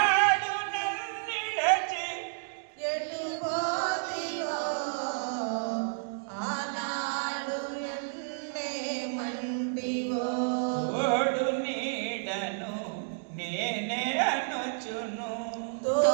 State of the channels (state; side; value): silent; left; digital silence